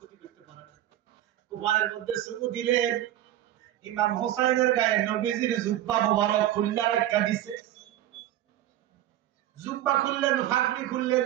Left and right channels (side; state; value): left; quieter; 13.1 dB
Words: করতে পারে না। কুফারের মধ্যে চুমু দিলেন, ইমাম হোসাইনের গায়ে নবীজির জুব্বা মোবারক খুললা রাখা দিছে। জুব্বা খুললেন, ফাগড়ি খুললেন,